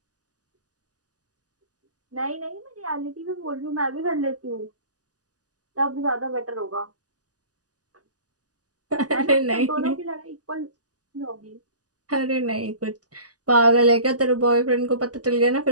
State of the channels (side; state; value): left; late; 0.67 ms